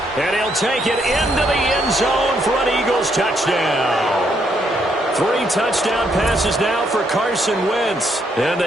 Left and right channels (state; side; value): normal; both; correlation 0.74